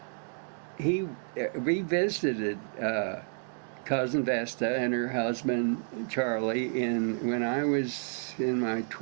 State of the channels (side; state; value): left; silent; 58 dB below the other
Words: he revisited cousin Vesta and her husband Charlie when I was in my